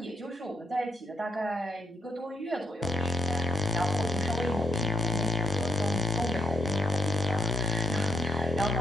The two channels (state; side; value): normal; both; correlation 0.77